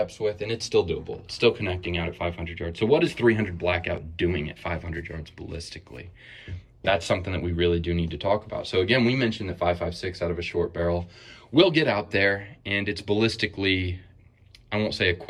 with, and it's still doable. It's still connecting out at 500 yards. So what is 300 blackout doing at 500 yards ballistically? That's something that we really do need to talk about. So again, we mentioned that 5.56 out of a short barrel will get out there, and it's ballistically, I won't say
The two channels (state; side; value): identical; both; correlation 1.00